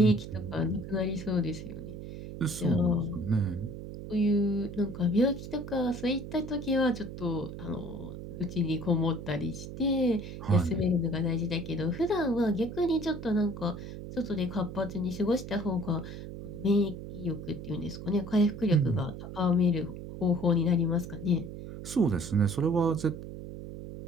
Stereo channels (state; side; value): noise; right; hum, 10 dB below the sound